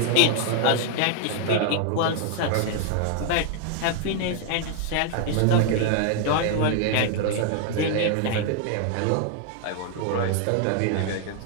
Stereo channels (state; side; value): different; both; correlation 0.00